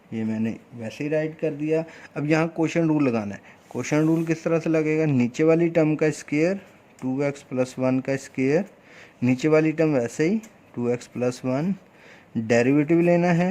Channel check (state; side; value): identical; both; correlation 1.00